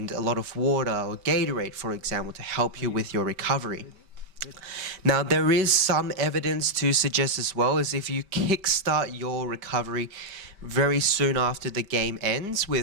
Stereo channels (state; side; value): late; left; 5.1 ms